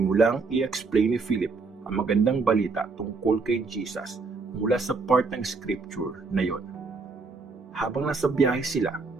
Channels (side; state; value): left; quieter; 4.3 dB